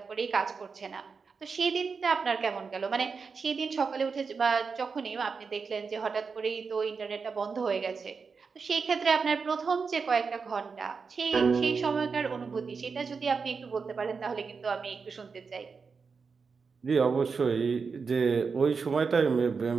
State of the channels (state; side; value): quieter; left; 5.2 dB